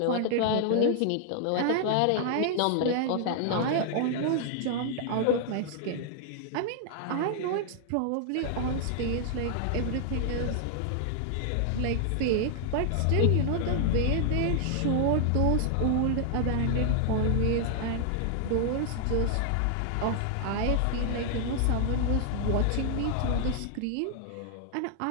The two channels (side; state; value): both; different; correlation -0.01